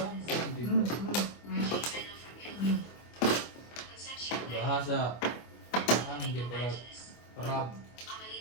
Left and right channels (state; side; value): late; right; 25 ms